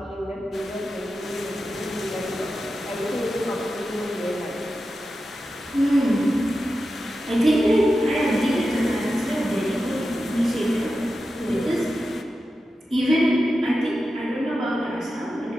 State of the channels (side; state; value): both; normal; correlation 0.91